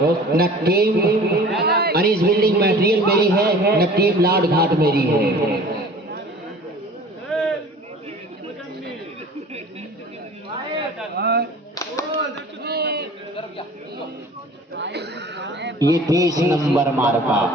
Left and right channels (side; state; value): both; normal; correlation 0.45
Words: न टीम अनीस बिल्डिंग मटेरियल मेरी है, न टीम लाड घाट मेरी है। ये 30 नंबर मार्का